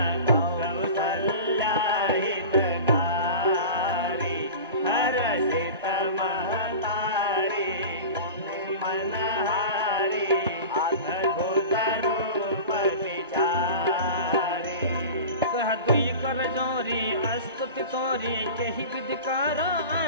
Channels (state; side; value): inverted; both; correlation -0.34